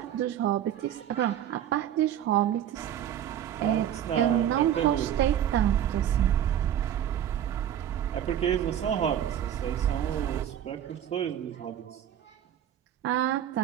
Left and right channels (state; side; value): quieter; left; 10.5 dB